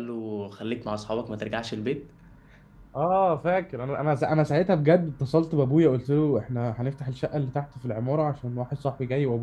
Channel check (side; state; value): both; identical; correlation 1.00